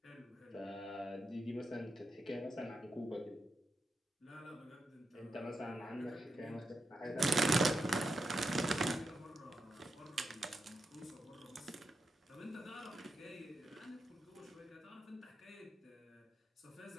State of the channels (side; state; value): both; normal; correlation 0.86